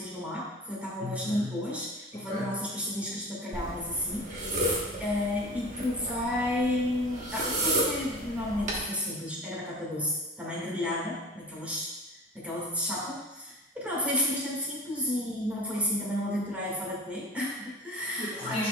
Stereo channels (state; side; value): normal; both; correlation 0.38